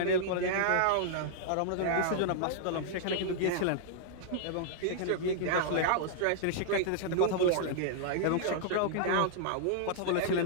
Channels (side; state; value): both; different; correlation -0.01